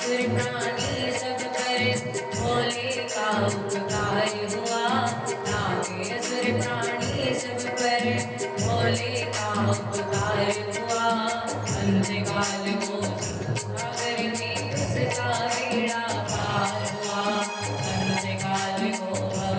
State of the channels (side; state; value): both; identical; correlation 1.00